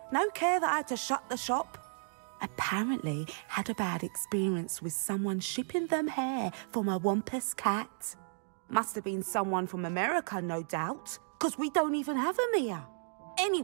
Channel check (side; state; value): left; silent; digital silence